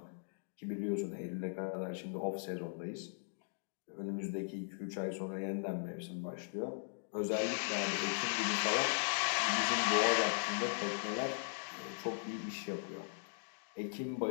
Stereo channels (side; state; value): right; silent; digital silence